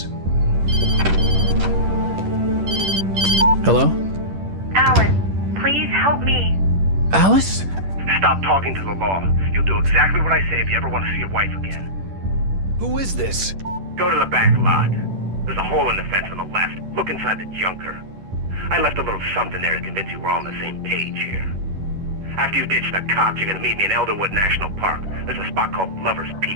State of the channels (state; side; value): late; left; 10 ms